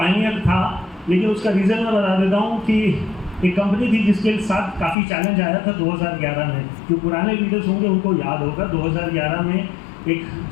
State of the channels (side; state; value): right; drops out; at 5.0 s